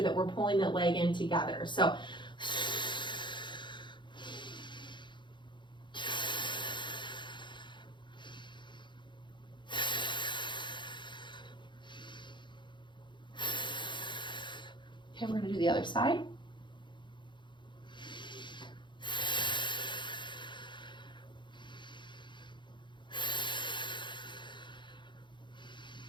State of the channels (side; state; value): right; late; 0.23 ms